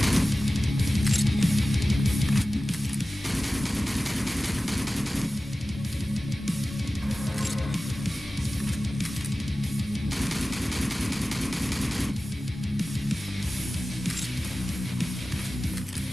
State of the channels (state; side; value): normal; both; correlation 0.96